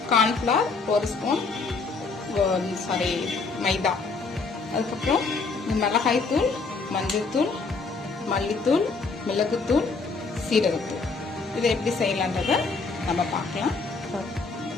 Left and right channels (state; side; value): quieter; right; 4.2 dB